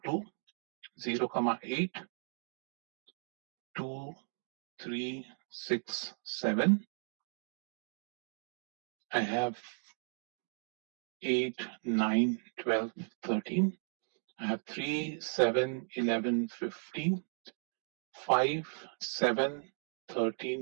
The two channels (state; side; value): silent; left; 54 dB below the other